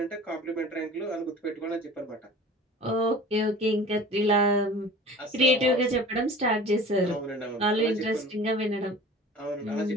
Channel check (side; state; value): both; normal; correlation 0.42